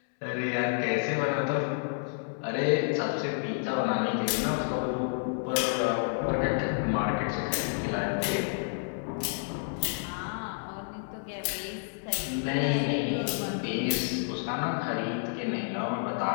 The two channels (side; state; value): right; silent; digital silence